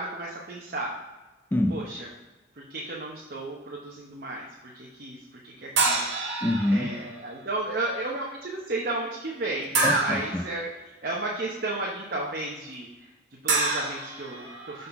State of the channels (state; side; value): normal; both; correlation 0.23